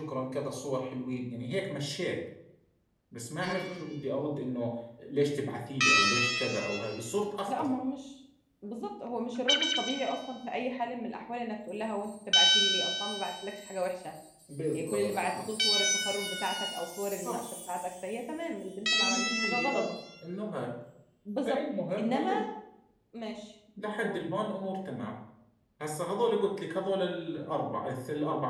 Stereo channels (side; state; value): both; identical; correlation 1.00